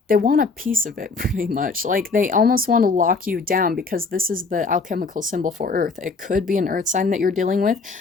they want a piece of it pretty much. Like they almost want to lock you down because this is the alchemical symbol for earth. It could be an earth sign that you're dealing with,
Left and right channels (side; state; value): right; quieter; 4.2 dB